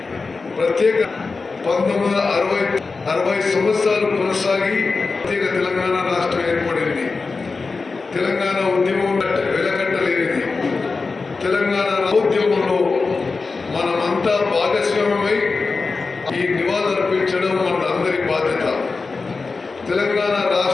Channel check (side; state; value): right; quieter; 4.2 dB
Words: ప్రత్యేక 1960 సంవత్సరాలు కొనసాగి ప్రత్యేక తెలంగాణ రాష్ట్రం ఏర్పడింది. తెలంగాణ ఉద్యమం వెలకట్టలేనిది. తెలంగాణ ఉద్యమంలో మనమంతా భాగస్వామ్యమై ఈ నివాళులర్పించడం మన అందరి బాధ్యత. తెలంగాణ